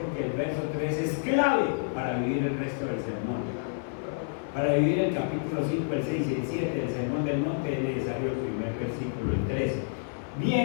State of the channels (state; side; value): silent; right; digital silence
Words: el verso 3 es clave para vivir el resto del sermón. Para vivir el capítulo 5, el 6 y el 7 del Sermón del Monte es necesario el primer versículo, el 13.